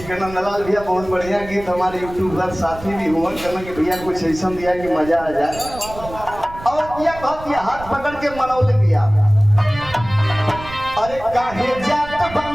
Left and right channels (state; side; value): noise; right; rumble, 15 dB below the sound